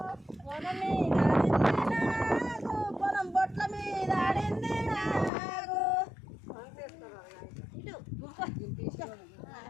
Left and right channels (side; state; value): right; drops out; at 5.3 s